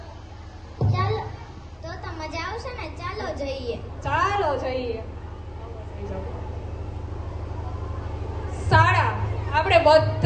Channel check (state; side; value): identical; both; correlation 1.00